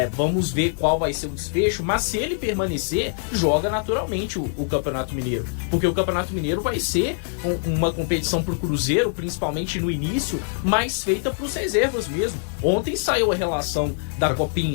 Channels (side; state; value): right; silent; digital silence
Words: Vamos ver qual vai ser o desfecho, mas se ele permanecer, joga naturalmente o Campeonato Mineiro, porque o Campeonato Mineiro vai ser uma competição pro Cruzeiro, principalmente no início, mas feita pros reservas mesmo. Ontem saiu a relação da